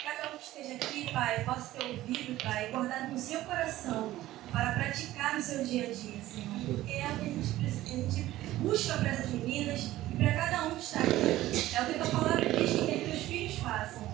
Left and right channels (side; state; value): left; quieter; 15.4 dB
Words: Cada um que esteja aqui, Pai, possa ter ouvido, Pai, guardado no seu coração para praticar no seu dia a dia, Senhor. Porque é o que a gente busca para essas meninas e para cada um que está aqui. É o que a tua palavra diz que quer que teus filhos façam.